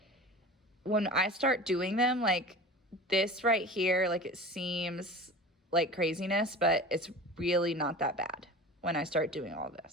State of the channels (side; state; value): both; normal; correlation 0.36